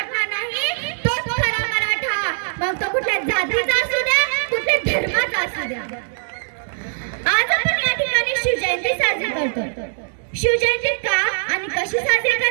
नाही, तोच खरा मराठा, मग तो कुठल्या जातीचा असू द्या, कुठल्या धर्माचा असू द्या। आज आपण या ठिकाणी शिवजयंती साजरी करतो। शिवजयंती का आणि कशी साजरी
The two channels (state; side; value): silent; left; digital silence